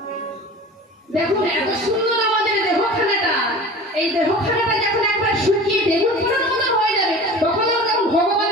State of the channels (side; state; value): both; normal; correlation 0.38